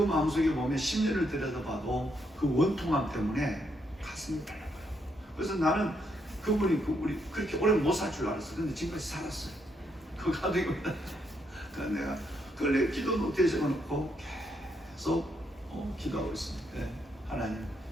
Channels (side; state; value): both; normal; correlation 0.77